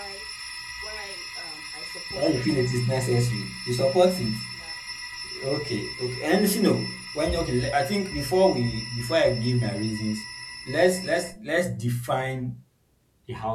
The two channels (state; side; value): identical; both; correlation 1.00